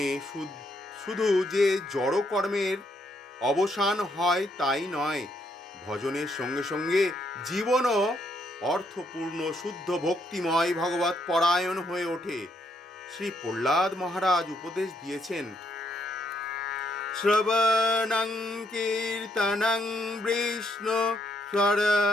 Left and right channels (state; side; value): normal; both; correlation 0.74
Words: শুধু যে জড় কর্মের অবসান হয় তাই নয়, ভজনের সঙ্গে সঙ্গে জীবনও অর্থপূর্ণ শুদ্ধ ভক্তিময় ভগবত পরায়ণ হয়ে ওঠে। শ্রী প্রহ্লাদ মহারাজ উপদেশ দিয়েছেন, শ্রবণং কীর্তনং বিষ্ণু